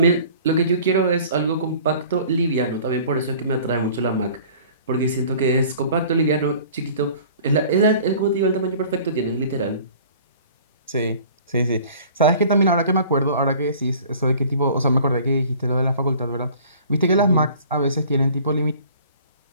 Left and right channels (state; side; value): inverted; both; correlation -0.48